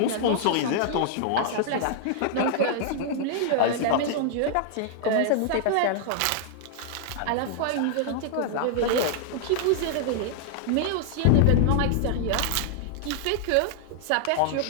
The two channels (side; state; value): both; different; correlation -0.01